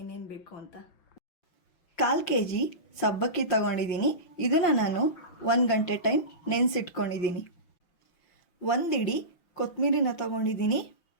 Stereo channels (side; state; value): right; late; 5.6 ms